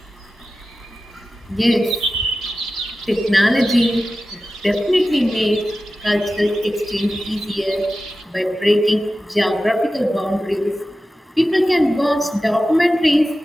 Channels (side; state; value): both; normal; correlation 0.94